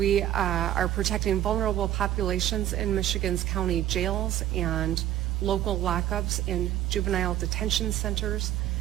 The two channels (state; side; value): quieter; left; 12.7 dB